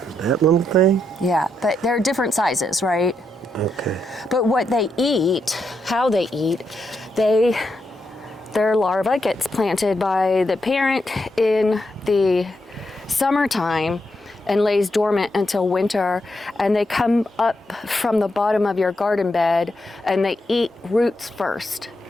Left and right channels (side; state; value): both; normal; correlation 0.82